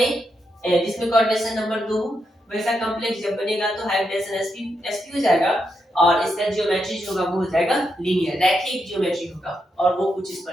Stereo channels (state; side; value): normal; both; correlation 0.83